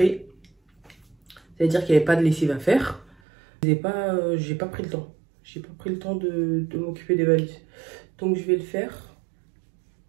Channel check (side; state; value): left; drops out; at 3.2 s